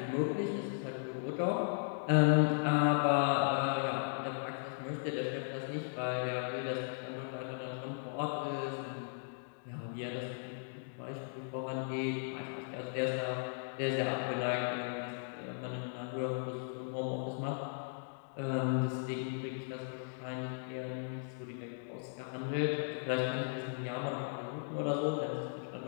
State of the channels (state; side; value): silent; right; digital silence